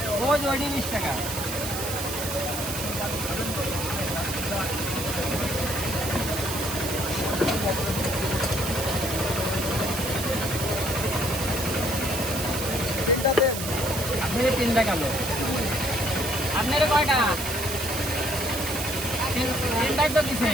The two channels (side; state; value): right; noise; hiss, 5 dB below the sound